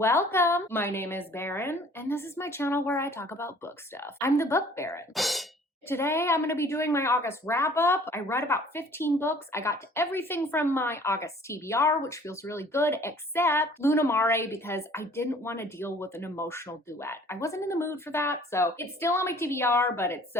My name is Baron, and this is my channel where I talk about book stuff. I'm the Book Baron. Today, I'm going to be doing my August wrap-up. I read about 15 books. I got to everything from my August TBR, which feels really good, except Luna Mare, because I didn't want to deal with an emotional duet. I wasn't in the mood for that, so it's still on my TBR, but it's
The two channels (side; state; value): both; normal; correlation 0.53